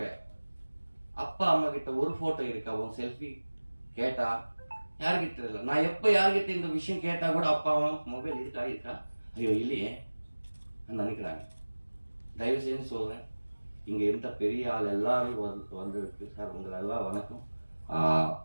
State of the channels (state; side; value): inverted; both; correlation -1.00